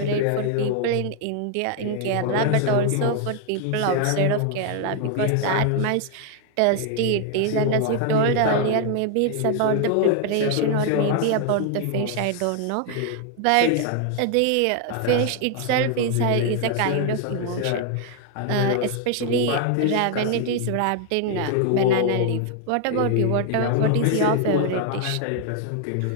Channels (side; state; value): both; different; correlation 0.00